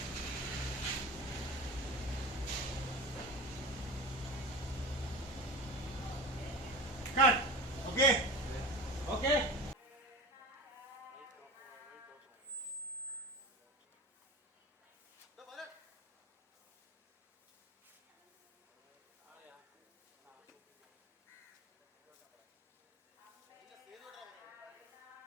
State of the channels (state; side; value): normal; both; correlation 0.31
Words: cut okay okay